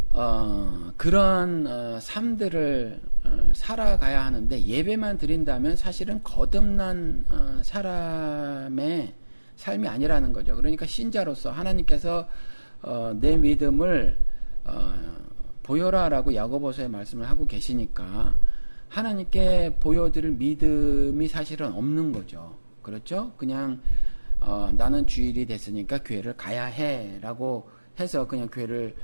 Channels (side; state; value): both; inverted; correlation -1.00